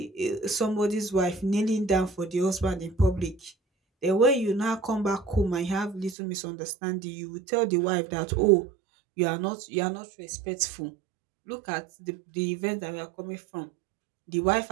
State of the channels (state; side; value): drops out; left; at 6.2 s